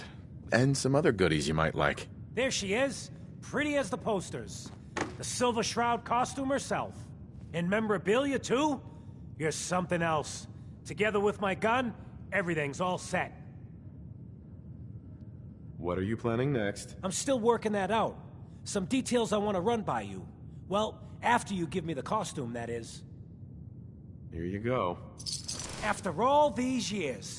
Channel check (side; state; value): both; identical; correlation 1.00